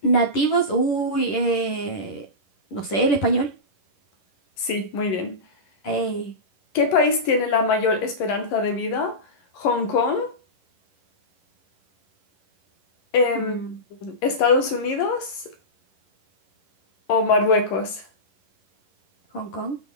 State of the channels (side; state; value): right; late; 11 ms